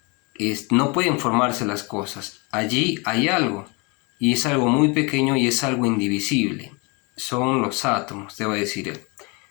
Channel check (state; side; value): quieter; right; 30.0 dB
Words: no pueden formarse las cosas. Allí hay algo, y es algo muy pequeño y es algo indivisible. Son los átomos, te va a decir él.